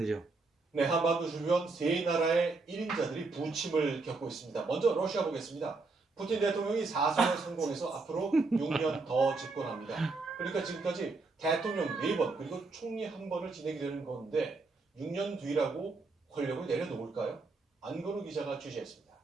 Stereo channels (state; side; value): quieter; left; 3.8 dB